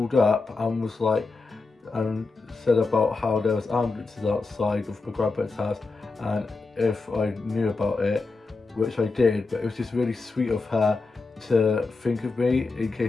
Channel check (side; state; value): right; quieter; 3.9 dB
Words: up and was like, and said about how there was ambulances outside of my grandpa's house, and if I knew about it, which I did, but it was just really sweet of her to think of me in